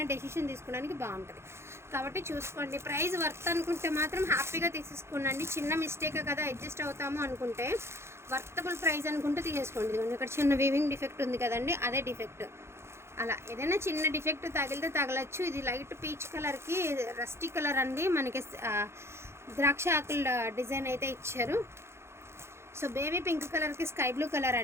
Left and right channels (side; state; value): left; late; 0.13 ms